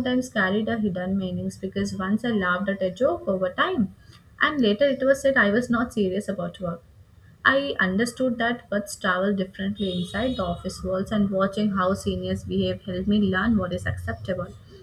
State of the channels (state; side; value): identical; both; correlation 1.00